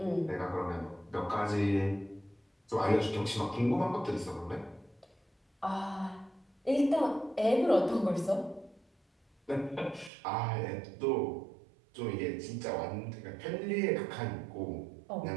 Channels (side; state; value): left; drops out; at 10.1 s